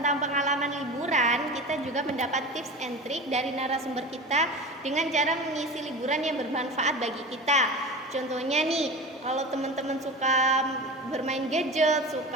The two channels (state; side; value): normal; both; correlation 0.31